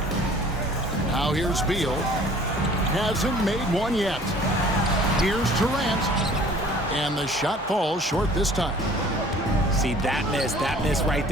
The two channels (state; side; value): normal; both; correlation 0.51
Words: Now here's Beal. Hasn't made one yet. Here's Durant. And the shot falls short this time. See, that miss right